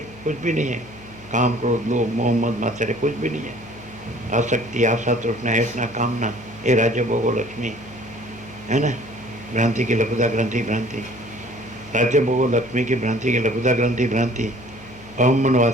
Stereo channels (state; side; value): noise; left; hum, 21 dB below the sound